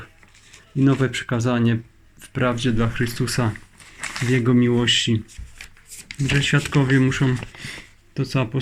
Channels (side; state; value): both; identical; correlation 1.00